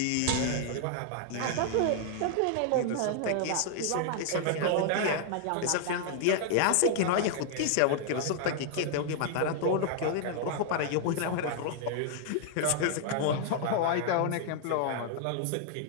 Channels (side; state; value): both; different; correlation 0.00